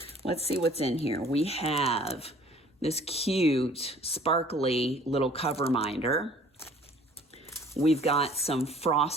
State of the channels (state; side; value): normal; both; correlation 0.53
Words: let's see what's in here. We have this cute, sparkly little cover minder. We've got some